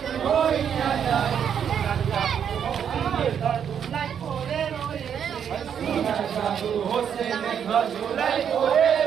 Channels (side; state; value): left; quieter; 8.2 dB